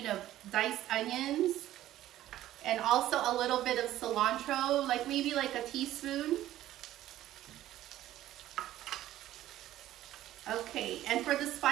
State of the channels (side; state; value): left; quieter; 13.7 dB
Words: of diced onions and also a little bit of cilantro, like maybe like a teaspoon. Okay, and for the